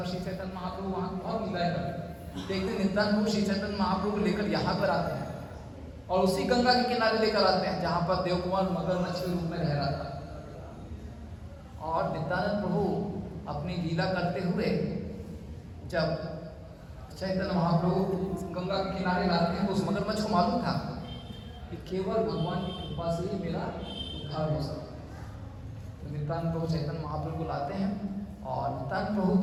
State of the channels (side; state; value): both; identical; correlation 1.00